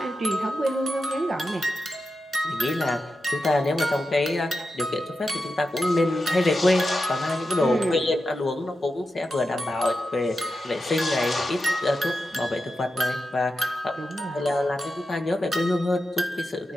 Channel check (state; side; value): normal; both; correlation 0.90